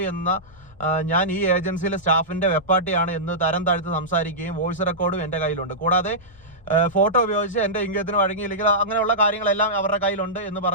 എന്ന ഞാൻ ഈ ഏജൻസിയിലെ സ്റ്റാഫിൻ്റെ വെപ്പാട്ടിയാണ് എന്ന് തരം താഴ്ത്ത് സംസാരിക്കുകയും വോയിസ് റെക്കോർഡും എൻ്റെ കയ്യിലുണ്ട്. കൂടാതെ ഫോട്ടോ ഉപയോഗിച്ച് എൻ്റെ ഇംഗിതത്തിന് വഴങ്ങിയില്ലെങ്കിൽ അങ്ങനെയുള്ള കാര്യങ്ങളെല്ലാം അവരുടെ കയ്യിലുണ്ട് എന്ന്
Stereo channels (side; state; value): both; normal; correlation -0.15